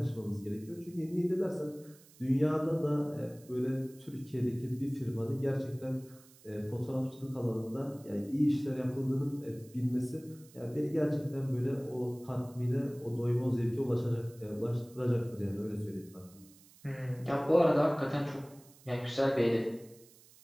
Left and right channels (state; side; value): noise; right; hiss, 25 dB below the sound